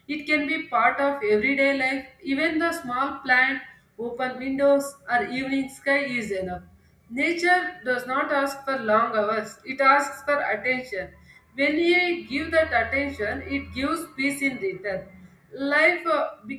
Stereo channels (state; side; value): identical; both; correlation 1.00